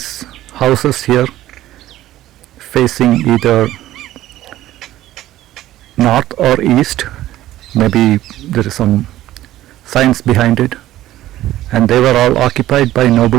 houses here facing either north or east. Maybe there is some science behind it. And they were all occupied by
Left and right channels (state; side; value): quieter; left; 14.5 dB